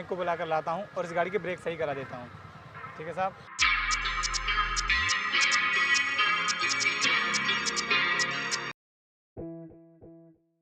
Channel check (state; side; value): identical; both; correlation 1.00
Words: को बुला कर लाता हूँ और इस गाड़ी के ब्रेक सही करा देता हूँ। ठीक है साहब।